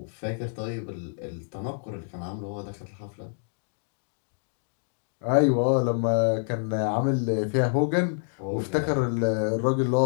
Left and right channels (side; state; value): right; silent; digital silence